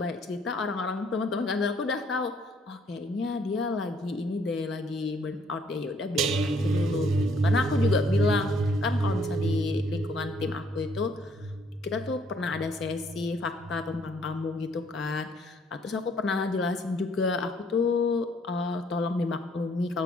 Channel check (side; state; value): both; normal; correlation 0.65